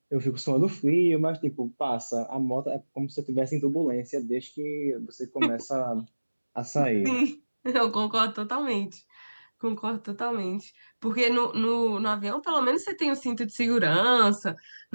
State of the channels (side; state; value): both; inverted; correlation -1.00